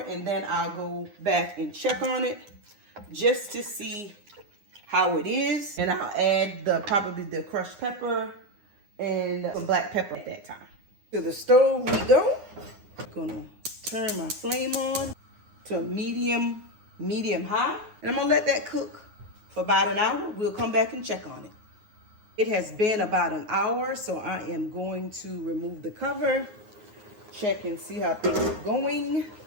then I'll go back and check on it just to see how it is. And I'll add probably the crushed pepper and some black pepper at that time. To the stove we go. I'm going to turn my flame on to medium high. And I'm going to let that cook for about an hour. We'll come back and check on it. It has been about an hour, so I am going to remove the cover, check and see how things are going.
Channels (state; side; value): late; left; 9.7 ms